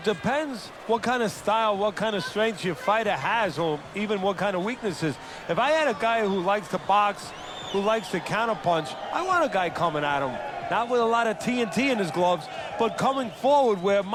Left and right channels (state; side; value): identical; both; correlation 1.00